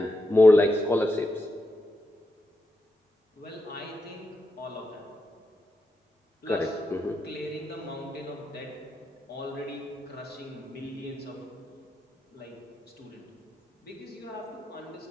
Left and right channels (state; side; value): normal; both; correlation 0.86